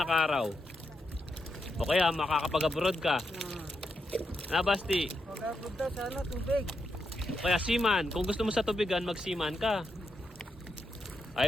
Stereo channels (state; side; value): normal; both; correlation 0.84